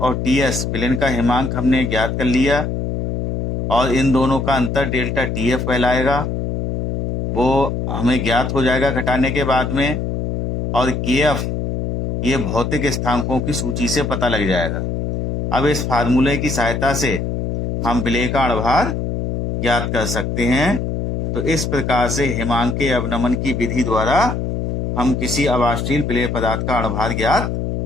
और TS विलेन का हिमांक हमने ज्ञात कर लिया, और इन दोनों का अंतर डेल्टा TF कहलाएगा, वो हमें ज्ञात हो जाएगा घटाने के बाद में। और KF ये भौतिक स्थानांकों की सूची से पता लग जाएगा। अब इस फार्मूले की सहायता से हम विलेय का अणुभार ज्ञात कर सकते हैं। तो इस प्रकार से हिमांकीय अवनमन की विधि द्वारा हम किसी अवाष्शील विलेय पदार्थ का अणुभार ज्ञात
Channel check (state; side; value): noise; left; hum, 2 dB below the sound